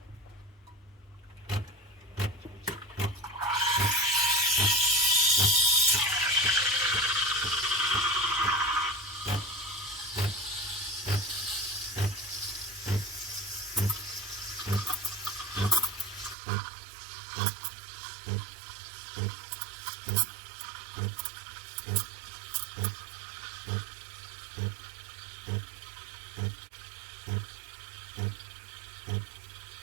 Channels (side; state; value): left; drops out; at 16.4 s